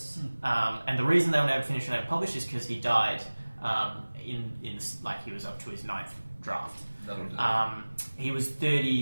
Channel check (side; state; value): both; inverted; correlation -1.00